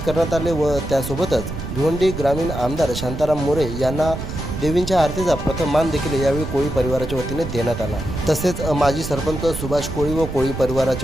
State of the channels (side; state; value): right; noise; rumble, 7 dB below the sound